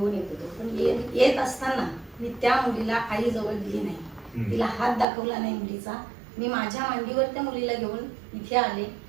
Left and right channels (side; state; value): left; drops out; at 5.1 s